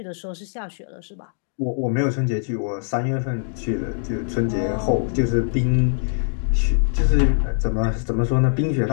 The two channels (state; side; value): silent; right; digital silence